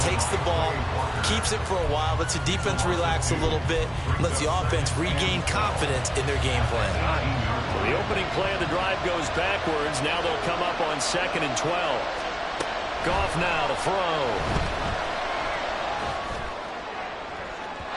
takes the ball, keeps it for a while, lets the defense relax a little bit, lets the offense regain confidence in their game plan. Well, the opening play of the drive goes backwards. Now they'll come up on 2nd and 12. Goff now to throw.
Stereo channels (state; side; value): identical; both; correlation 1.00